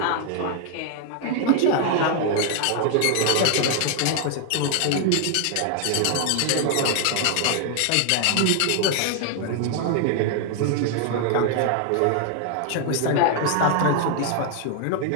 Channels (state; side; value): different; both; correlation 0.00